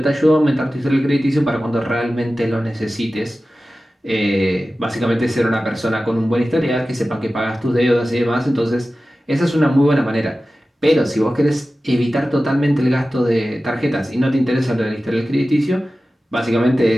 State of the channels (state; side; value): normal; both; correlation 0.95